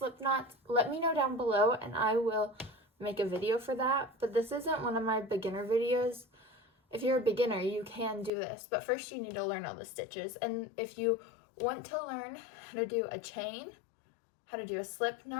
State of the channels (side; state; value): right; drops out; at 8.3 s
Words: knots, let me know down below and I will make a video for that. But this isn't one of my beginner videos. If you're a beginner, you can do this, but first you need to learn all the stitches. And if you want to learn how to do a chain, how to do a slip